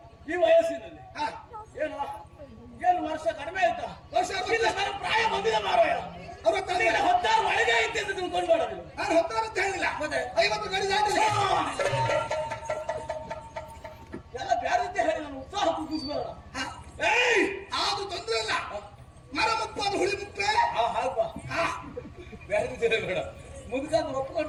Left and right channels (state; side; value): identical; both; correlation 1.00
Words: ಈ ವಯಸ್ಸಿನಲ್ಲಿ ಹಾ, ಏನು ಏನು ವರ್ಷ ಕಡಿಮೆ ಆಯ್ತಾ? ವರ್ಷ ಇಲ್ಲ, ನನ್ನ ಪ್ರಾಯ ಬಂದಿದೆ ಮಾರಾಯ. 16 ಒಳಗೆ ಐತೆ ಅಂತ ತಿಳ್ಕೊಂಡು ಮಾಡೋದಿಲ್ಲ. ನಾನು ಹೊತ್ತಾರ ಅಂತ ಹೇಳಿಲ್ಲ. ಮತ್ತೆ 50 ಗಡಿ ದಾಟಿಲ್ಲ. ಎಲ್ಲ ಬ್ಯಾರತ್ತೆ ಹೇಳಿ ನಾನು ಉತ್ಸಾಹ ಕುಗ್ಗಿಸ್ಬೇಡ. ಅದು ತೊಂದ್ರೆ ಇಲ್ಲ. ಮರ ಮುಪ್ಪು ಅದು ಹುಳಿ ಮುಪ್ಪೆ. ಹಾಗಪ್ಪ, ಬ್ಯಾರತ್ತೆ ಬೇಡ. ಮುದುಕಂದು